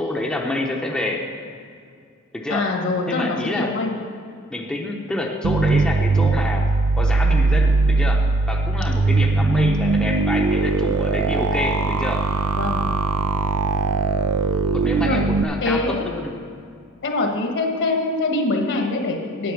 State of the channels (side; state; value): both; normal; correlation 0.58